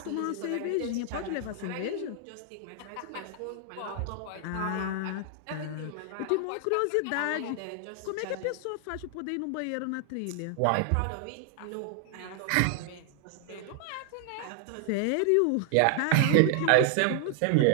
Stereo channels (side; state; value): both; different; correlation 0.00